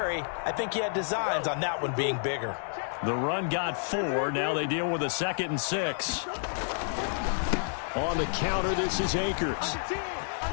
I think he had designs on that one being bigger. The run got 4. Now they deal with a 2nd and 6. On the counter, this is Akers.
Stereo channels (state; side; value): silent; right; 58 dB below the other